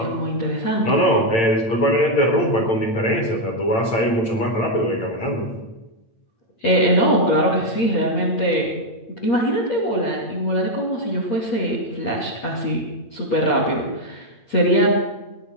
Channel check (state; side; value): late; right; 8.8 ms